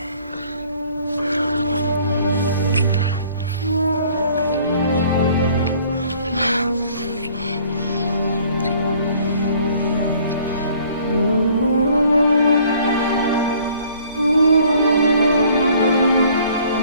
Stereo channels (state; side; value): inverted; both; correlation -0.56